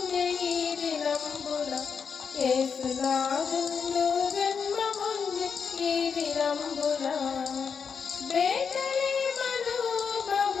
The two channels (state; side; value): quieter; right; 6.2 dB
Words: దినంబున యేసునాదుండు జన్మముంది దినంబున బేతలేమను